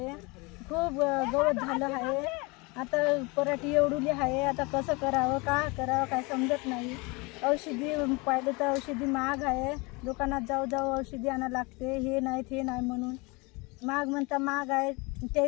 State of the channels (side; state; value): right; quieter; 27.0 dB